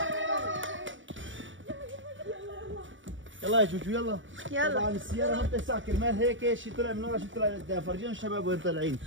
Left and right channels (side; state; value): left; late; 0.56 ms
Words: يلا يا جوجو يلا. طبعا السيارة ما بتسع كرمال هيك شيء طلع من ورا شيء طلع لقدام. فرجيهم الشباب وين طالعين.